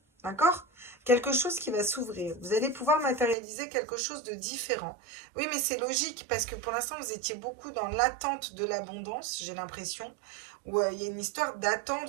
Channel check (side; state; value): left; drops out; at 3.4 s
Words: d'accord? Quelque chose qui va s'ouvrir. Vous allez pouvoir matérialiser quelque chose de différent. Oui, mais c'est logique, parce que pour l'instant, vous étiez beaucoup dans l'attente de l'abondance, j'ai l'impression, où il y a une histoire